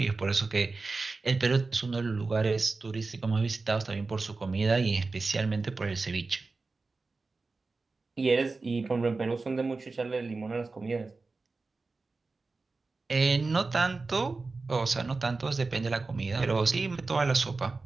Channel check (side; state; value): left; quieter; 3.8 dB